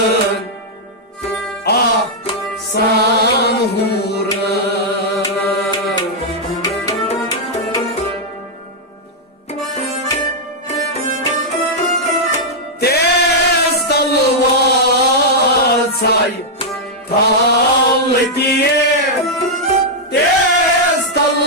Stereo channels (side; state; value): both; normal; correlation -0.05